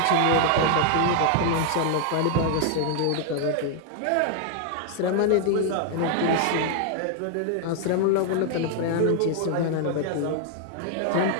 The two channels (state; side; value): different; both; correlation 0.00